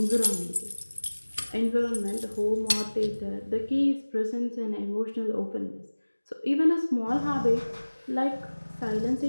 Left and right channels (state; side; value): inverted; both; correlation -1.00